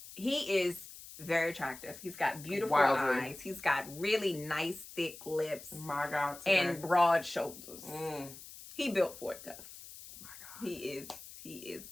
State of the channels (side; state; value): left; noise; hiss, 15 dB below the sound